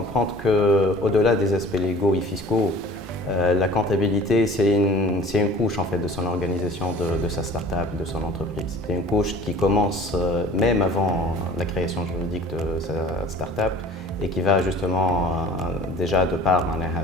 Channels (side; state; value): both; normal; correlation 0.46